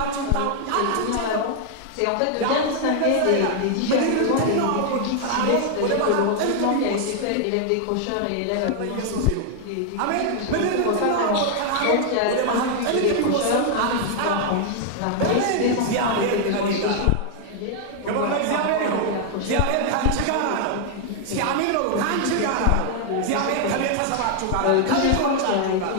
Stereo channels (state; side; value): different; both; correlation 0.00